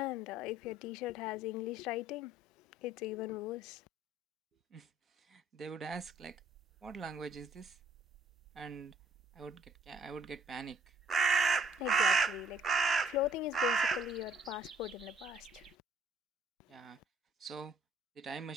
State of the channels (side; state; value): both; normal; correlation 0.63